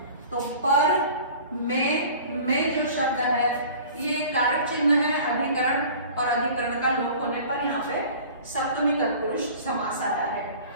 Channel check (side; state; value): both; inverted; correlation -0.43